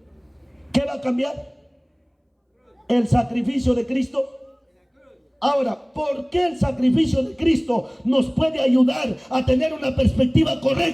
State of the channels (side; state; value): both; identical; correlation 1.00